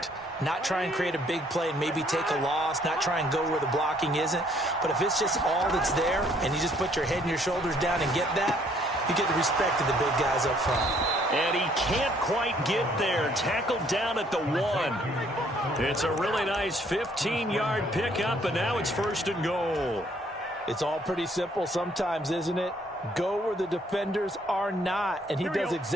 Not try and create a big play and maybe take a loss, not try and go where the blocking isn't. But if it's just all that's there and you just put your head and your shoulders down and get that, you get the respect of the big guys up front. And he can't quite get there. Tackled down at the 1. It's a really nice 15-yard pickup, and now it's 1st and goal. It's all pretty simple sometimes, isn't it? Go where the defenders are not, and he does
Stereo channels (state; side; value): normal; both; correlation 0.64